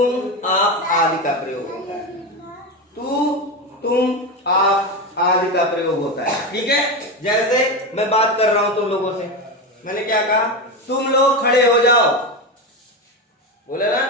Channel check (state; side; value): normal; both; correlation 0.17